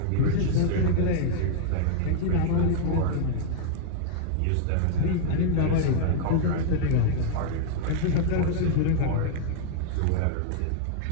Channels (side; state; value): both; different; correlation -0.01